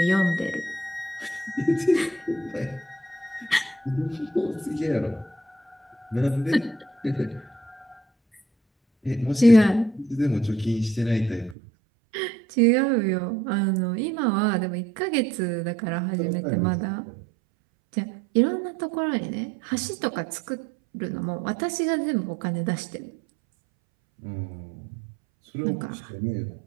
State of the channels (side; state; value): left; drops out; at 11.6 s